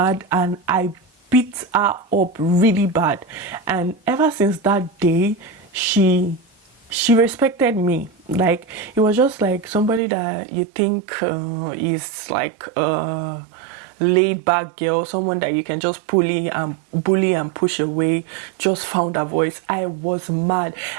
and I beat her up really bad. And ever since that day, she respected me. Like, it was just like somebody that you think is like a laid back girl, someone that you can just bully and push away, just found her voice. I was mad.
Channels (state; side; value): drops out; left; at 10.0 s